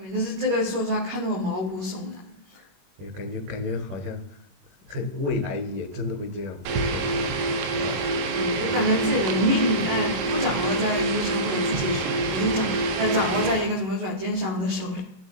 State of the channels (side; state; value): left; late; 21 ms